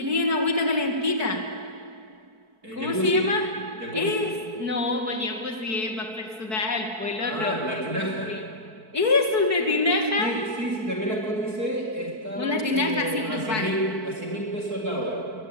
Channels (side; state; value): left; late; 4.6 ms